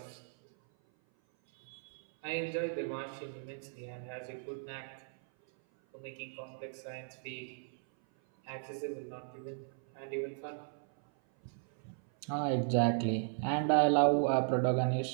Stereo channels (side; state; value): left; silent; 54 dB below the other